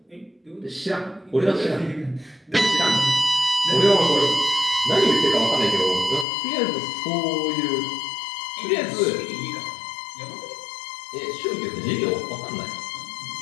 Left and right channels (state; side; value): drops out; right; at 6.2 s